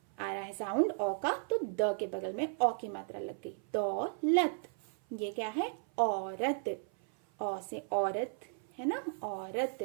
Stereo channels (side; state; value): left; silent; 54 dB below the other